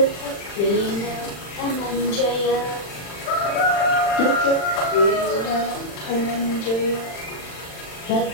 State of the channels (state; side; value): late; right; 40 ms